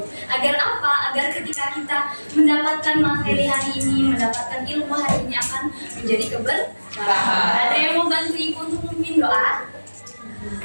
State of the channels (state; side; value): inverted; both; correlation -1.00